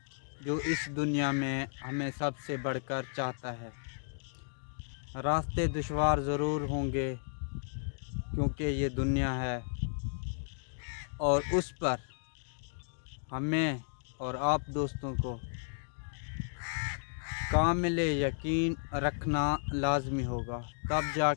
जो इस दुनिया में हमें सबसे बढ़कर चाहता है। रास्ते दुश्वार ज़रूर होंगे क्योंकि ये दुनिया है और उस पर हमें और आप दोस्तों को कामिल यकीन रखना लाजमी होगा, तब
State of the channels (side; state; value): right; silent; digital silence